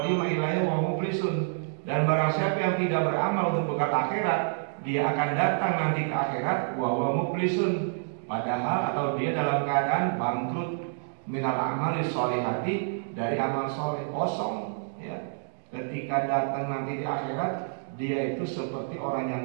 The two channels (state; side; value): silent; left; digital silence